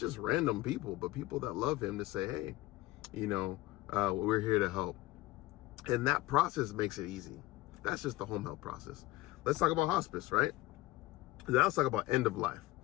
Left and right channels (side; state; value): right; quieter; 17.9 dB